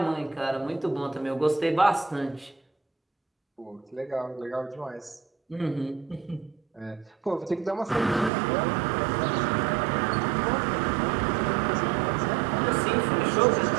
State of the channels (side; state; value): left; drops out; at 8.3 s